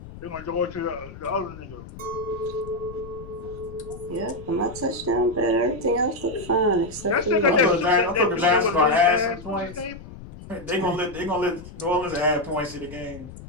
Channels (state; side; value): noise; left; rumble, 15 dB below the sound